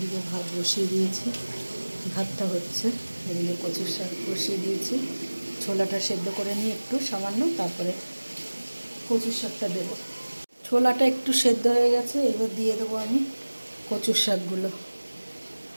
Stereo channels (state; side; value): inverted; both; correlation -1.00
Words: ভাত বসিয়ে দিয়েছি, ভাতটা হচ্ছে। এদিকে কচুর শাক বসিয়ে দিয়েছি, ছোলাটা সেদ্ধ করে নিয়ে একটু সামান্য, তারপরে কচুর শাকটা দেবো। ছোলাটা একটু সেদ্ধ হয়ে গেছে, এবার দিয়ে দেবো আমি কচুর শাকগুলো।